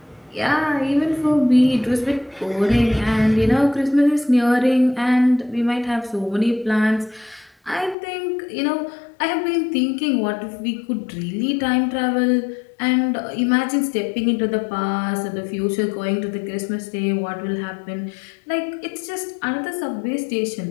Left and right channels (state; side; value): drops out; right; at 8.0 s